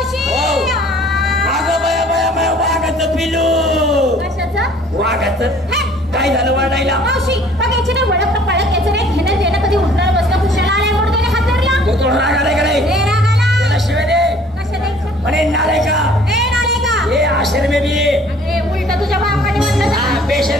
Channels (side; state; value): both; normal; correlation 0.54